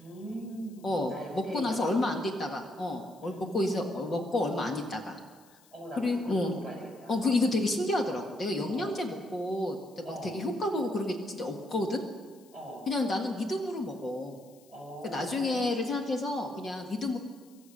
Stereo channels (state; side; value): noise; left; hiss, 28 dB below the sound